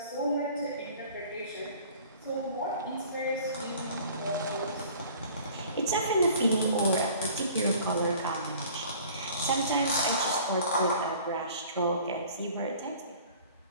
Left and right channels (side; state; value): both; inverted; correlation -0.49